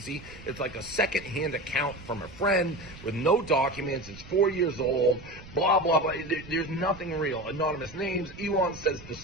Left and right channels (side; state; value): right; noise; rumble, 17 dB below the sound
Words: It's like a second-hand account from a friend with no documents. It's 4 years old, blah, blah, blah. There's nothing real. Anonymous names. Elon says the